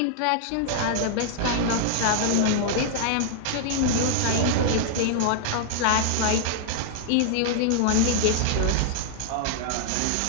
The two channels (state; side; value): different; both; correlation 0.00